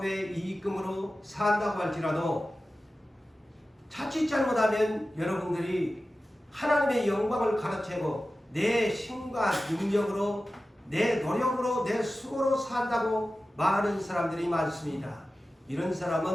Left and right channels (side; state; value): both; normal; correlation 0.95